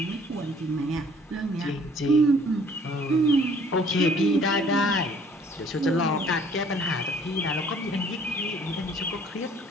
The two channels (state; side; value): normal; both; correlation 0.57